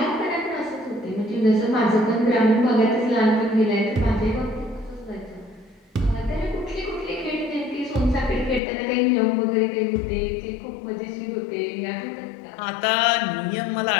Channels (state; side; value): drops out; right; at 8.6 s